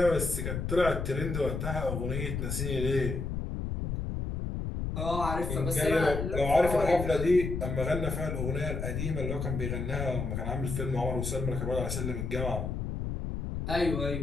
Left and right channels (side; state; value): left; noise; rumble, 3 dB below the sound